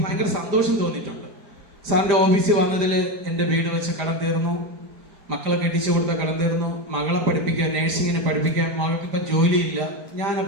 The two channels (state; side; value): late; left; 4.9 ms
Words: ഭയങ്കര സന്തോഷം തോന്നിയിട്ടുണ്ട്. സാറിൻ്റെ ഓഫീസിൽ വന്നതിൽ എൻ്റെ വീട് വെച്ച് കടം തീർന്നു, മക്കളെ കെട്ടിച്ചു കൊടുത്ത കടം തീർന്നു, മകളെ പഠിപ്പിക്കാൻ, നേഴ്സിങ്ങിനെ പഠിപ്പിക്കാൻ, മകൾക്ക് ഇപ്പം ജോലിയില്ല.